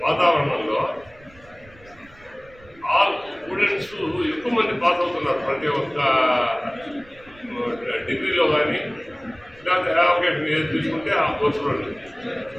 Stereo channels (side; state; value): right; noise; rumble, 25 dB below the sound